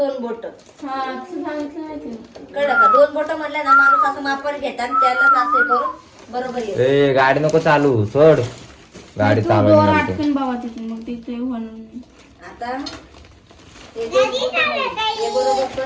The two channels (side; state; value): both; identical; correlation 1.00